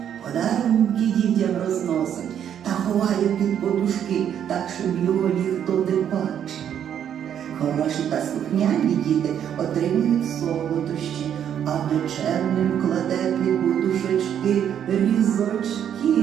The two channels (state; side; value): quieter; left; 9.3 dB